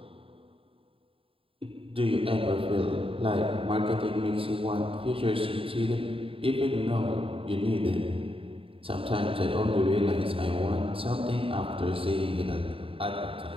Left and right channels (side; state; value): left; late; 0.27 ms